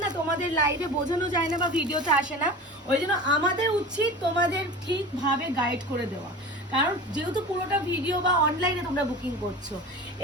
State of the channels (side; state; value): both; normal; correlation 0.34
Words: না তোমাদের লাইভে বোঝানো যায় না বা ভিডিওতে আসে না, ওই জন্য আমাদের উচিত তোমাদের ঠিকভাবে গাইড করে দেওয়া। কারণ যেহেতু পুরোটা ভিডিও বা অনলাইনে তোমরা বুকিং করছো।